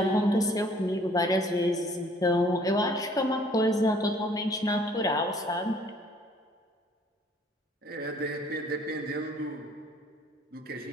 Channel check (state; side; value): normal; both; correlation 0.57